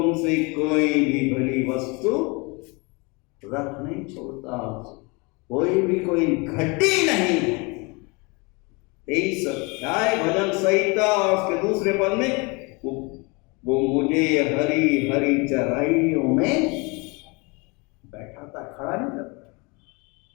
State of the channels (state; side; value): quieter; right; 28.6 dB